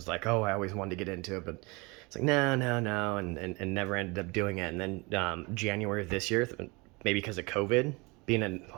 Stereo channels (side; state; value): left; quieter; 26.9 dB